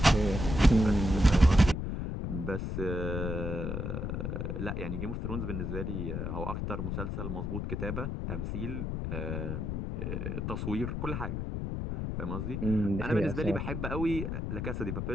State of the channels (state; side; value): noise; left; rumble, 3 dB below the sound